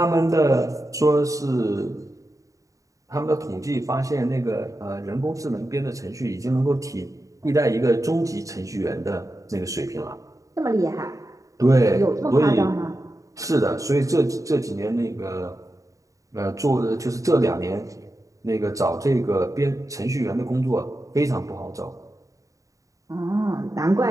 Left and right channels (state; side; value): late; left; 0.16 ms